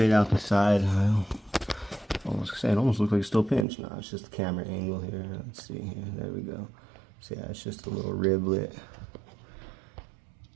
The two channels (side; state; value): left; drops out; at 3.7 s